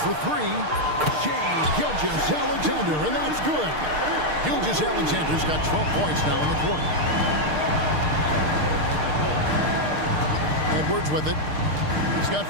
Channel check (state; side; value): late; left; 6.6 ms